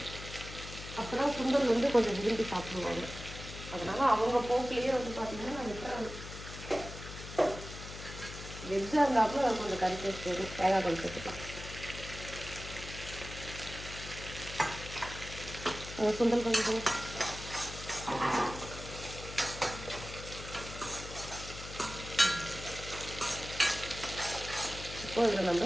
அப்போ தான் சுண்டல் வந்து கொஞ்சம் விரும்பி சாப்பிடுவாங்க. அதனால் அவங்க போக்கிலேயே வந்து பார்த்திங்கன்னா நான் விட்டுறேன். வெஜ்ஜாக இருந்தாப்புல அது கொஞ்சம் கறி டேஸ்ட் வரும். தேங்காய் கொஞ்சம் சேர்த்துக்கலாம். சுண்டல் கொஞ்சம் இப்போ இதில் நம்ம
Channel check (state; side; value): noise; left; hum, 11 dB below the sound